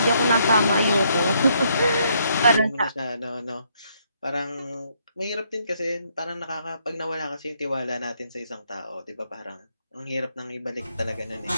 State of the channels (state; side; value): inverted; both; correlation -0.72